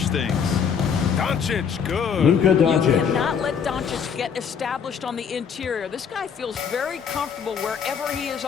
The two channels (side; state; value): right; quieter; 7.0 dB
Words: things. Doncic, good. Luka You Doncic. cannot let Doncic get established on the interior. This guy feels very comfortable wherever he is